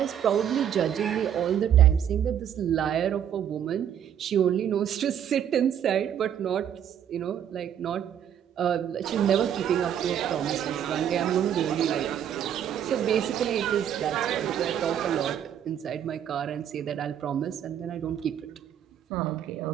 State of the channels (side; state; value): left; quieter; 9.5 dB